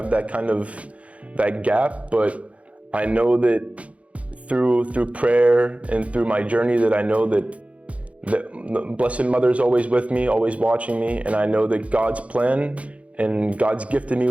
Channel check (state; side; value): late; left; 0.064 ms